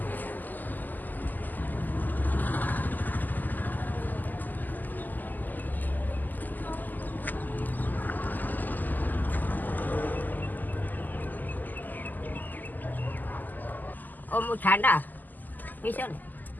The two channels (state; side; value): late; right; 0.085 ms